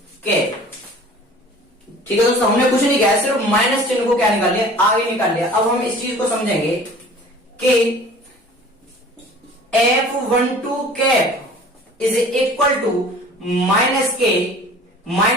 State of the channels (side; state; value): both; normal; correlation 0.46